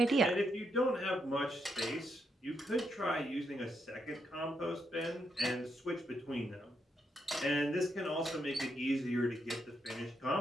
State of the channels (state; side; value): normal; both; correlation 0.79